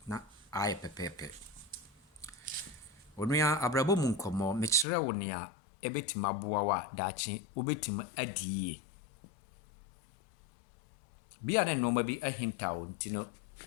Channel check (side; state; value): right; drops out; at 4.9 s